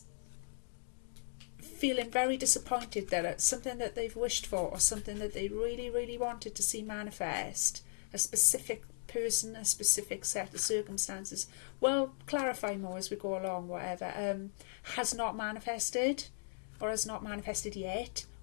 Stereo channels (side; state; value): right; silent; digital silence